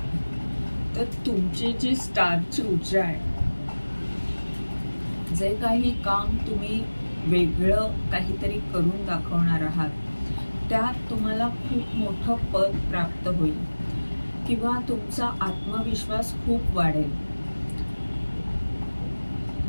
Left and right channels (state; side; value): inverted; both; correlation -1.00